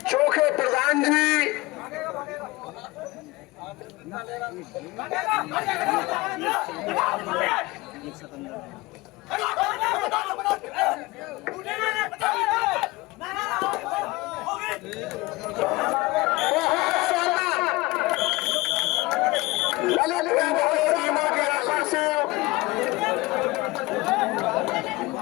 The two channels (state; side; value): quieter; right; 21.7 dB